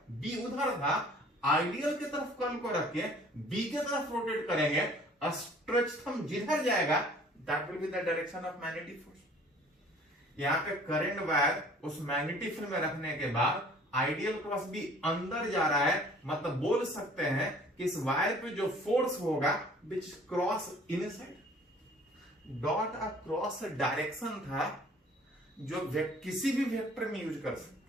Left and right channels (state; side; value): normal; both; correlation 0.53